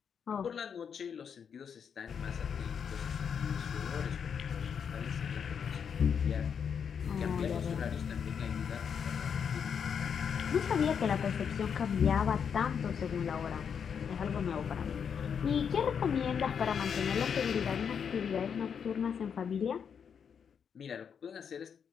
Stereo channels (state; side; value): quieter; right; 7.2 dB